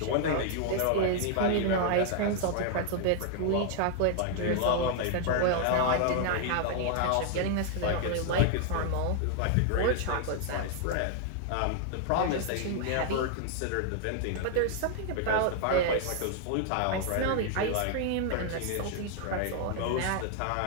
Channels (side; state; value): both; different; correlation 0.00